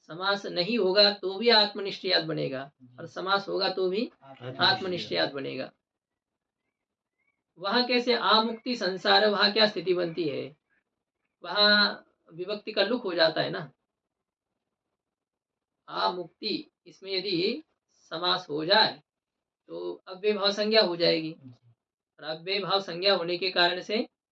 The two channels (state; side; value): identical; both; correlation 1.00